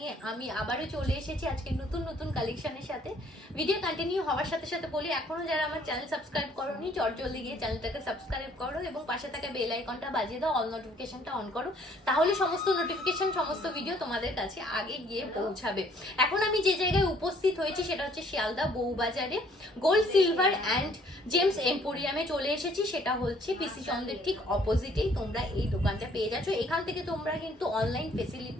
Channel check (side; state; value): both; normal; correlation 0.61